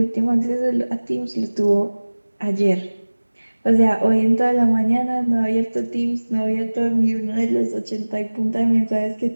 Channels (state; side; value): inverted; both; correlation -1.00